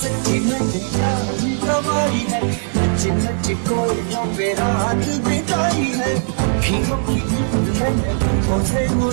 नैया कमाई है नच नच कोयलों पे रात बिताई है अखियों की नींद मैंने आंखों से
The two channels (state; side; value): silent; left; digital silence